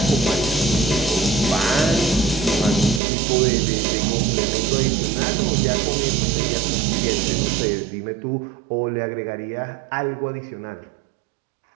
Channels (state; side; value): drops out; left; at 3.0 s